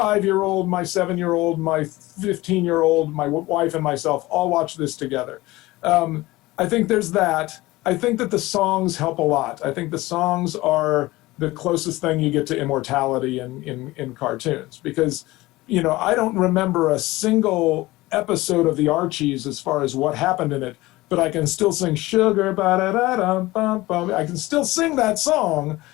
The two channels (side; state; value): right; quieter; 19.3 dB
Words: my 7-year-old, my 15-year-old, my wife and myself all watch this together. I think there's that. I think that the songs help a lot. I think the songs are the closest thing you get to immortality in cartoons, because, you know, I don't remember a single episode of the Archies as far as what happened in it, but I can still sing Sugar, ba-da-da-dum-bum-bum. I can still sing that song,